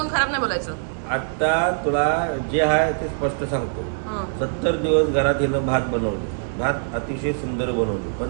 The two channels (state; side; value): silent; left; digital silence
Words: खराब नाही बोलायचं. आता तुला जे आहे ते स्पष्ट सांगतो. 70 दिवस घरात येणं भात बनवले, भात अतिशय सुंदर बनवले,